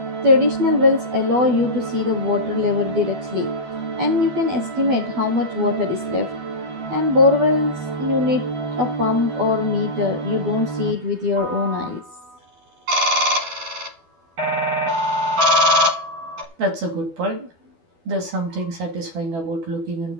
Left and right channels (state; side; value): late; left; 12 ms